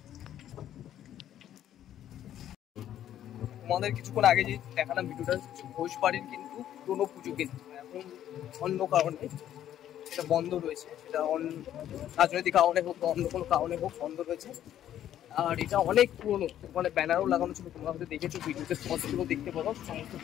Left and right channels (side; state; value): right; quieter; 11.3 dB